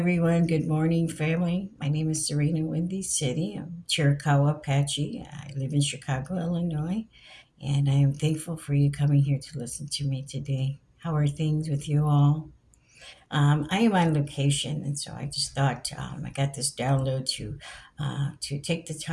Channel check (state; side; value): identical; both; correlation 1.00